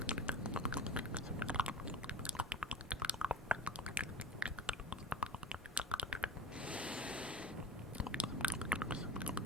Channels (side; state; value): both; normal; correlation 0.35